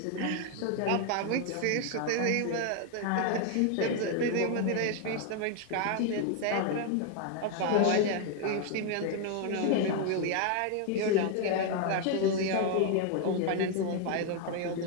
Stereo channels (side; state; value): both; different; correlation 0.01